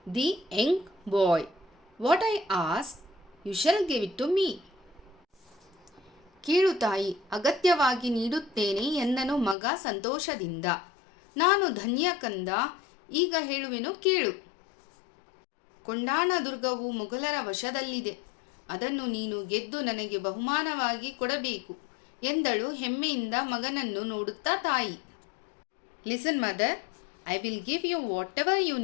the young boy. What I ask you shall give it to me. ಕೇಳು ತಾಯಿ, ಅಗತ್ಯವಾಗಿ ನೀಡುತ್ತೇನೆ ಎಂದನು ಮಗ ಸಂತೋಷದಿಂದ। ನಾನು ಧನ್ಯ ಕಂದ, ಈಗ ಹೇಳುವೆನು ಕೇಳು। ಕೊಂಡಾಣ ದುರ್ಗವು ಮೊಘಲರ ವಶದಲ್ಲಿದೆ, ಅದನ್ನು ನೀನು ಗೆದ್ದು ನನಗೆ ಬಹುಮಾನವಾಗಿ ಕೊಡಬೇಕು ಎಂದಳು ಹೆಮ್ಮೆಯಿಂದ ಮಗನನ್ನು ನೋಡುತ್ತಾ ತಾಯಿ। Listen mother, I will give you whatever you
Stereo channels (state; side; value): drops out; right; at 9.6 s